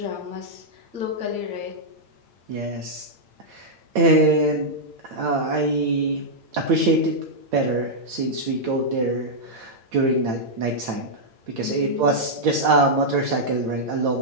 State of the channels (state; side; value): late; left; 8.9 ms